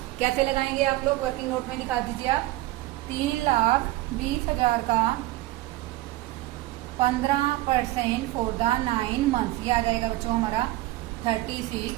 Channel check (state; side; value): quieter; left; 17.6 dB